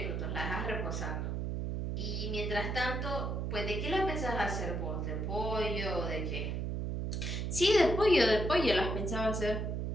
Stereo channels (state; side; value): noise; right; hum, 1 dB below the sound